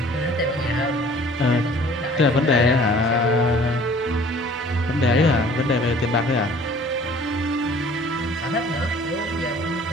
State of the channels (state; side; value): noise; right; hum, 25 dB below the sound